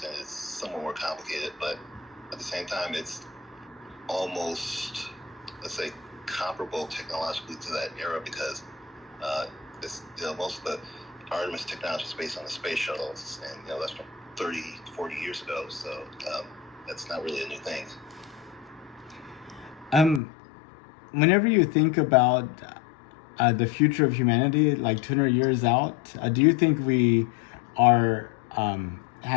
it's somewhat more complicated, but at the same time, it's almost, let's say, comparable technologically to that era because most of the Artemis technology is based on the space shuttles, and that's from 30, 40 years ago, so that's not really a new thing. Whenever you think about the future of humanity, like 200 years out, do you think we are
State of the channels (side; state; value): right; drops out; at 20.2 s